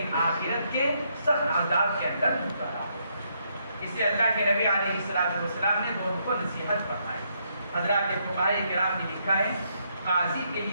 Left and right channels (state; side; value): inverted; both; correlation -0.75